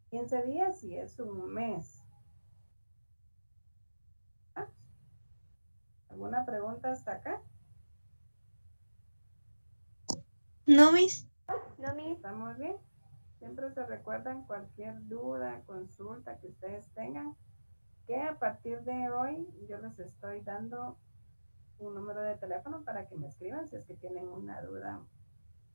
15 días y es un mes. ¿Ah? ¿Alguna pregunta hasta acá? No, Miss. ¿Estamos bien? Siempre se recuerdan cualquier duda, consulta que ustedes tengan, que a partir de hoy yo les estoy dando un número de teléfono para que me escriban si es que tienen una duda.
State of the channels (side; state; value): both; inverted; correlation -1.00